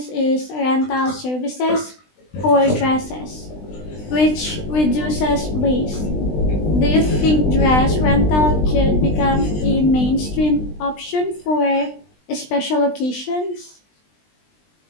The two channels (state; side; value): late; right; 20 ms